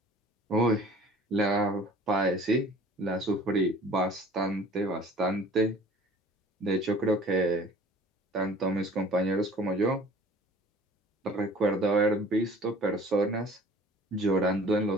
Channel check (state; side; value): normal; both; correlation 0.48